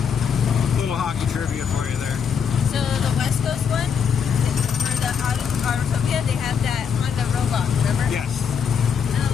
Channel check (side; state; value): right; quieter; 7.0 dB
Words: Little hockey trivia for you there. So the West Coast one, for the Autotopia, they have that Honda robot, remember? Yes. And a